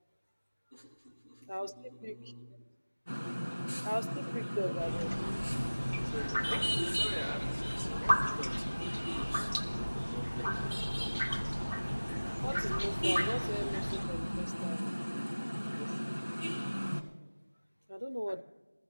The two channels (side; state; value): both; inverted; correlation -1.00